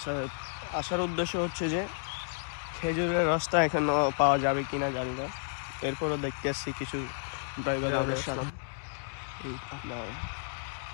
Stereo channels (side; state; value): right; silent; digital silence